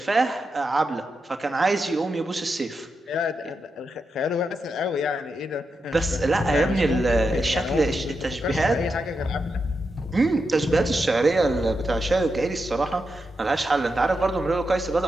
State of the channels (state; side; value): normal; both; correlation 0.86